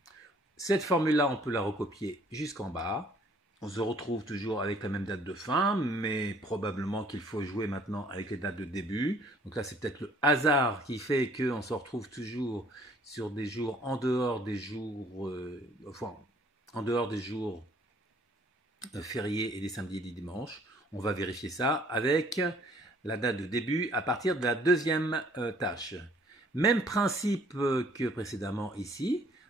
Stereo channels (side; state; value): both; normal; correlation 0.59